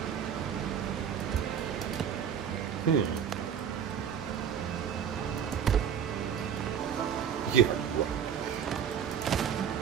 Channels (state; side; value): quieter; left; 8.2 dB